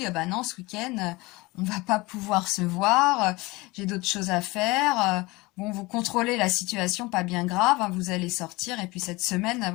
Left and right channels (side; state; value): right; quieter; 22.7 dB